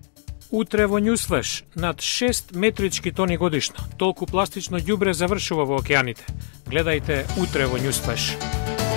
Утре во Newsflash над 6 метрички тони годишно. Толку пластично ѓубре завршува во океаните. Гледајте утре во Newsflash.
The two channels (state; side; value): silent; right; digital silence